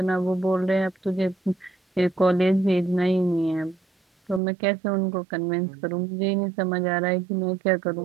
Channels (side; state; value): left; drops out; at 4.4 s